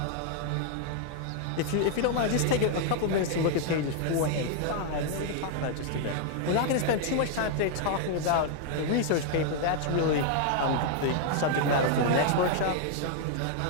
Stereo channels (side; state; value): both; different; correlation 0.00